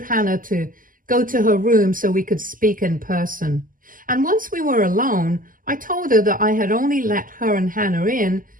Hannah to go to her room so we could speak in person. And once we were alone, I told her that I had only let her and Hannah in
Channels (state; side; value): late; left; 0.40 ms